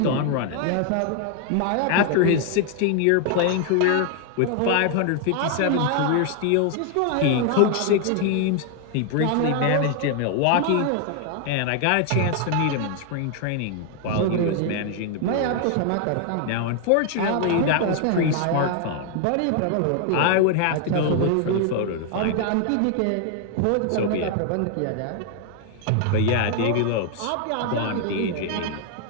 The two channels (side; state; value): both; different; correlation 0.00